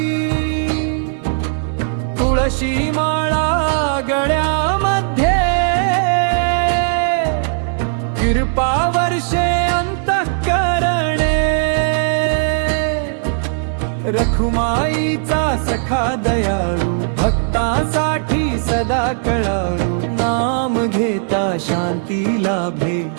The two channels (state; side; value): silent; left; digital silence